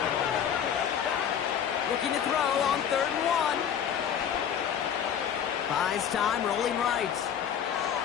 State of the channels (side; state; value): right; quieter; 8.6 dB